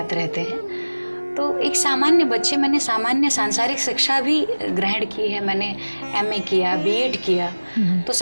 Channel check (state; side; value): inverted; both; correlation -1.00